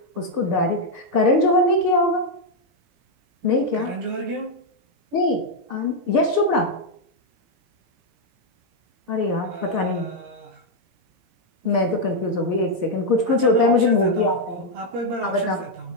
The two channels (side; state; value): left; late; 17 ms